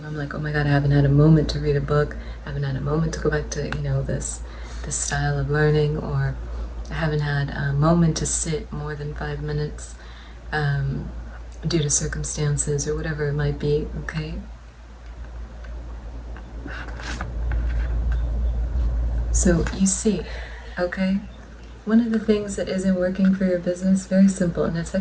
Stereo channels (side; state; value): both; identical; correlation 1.00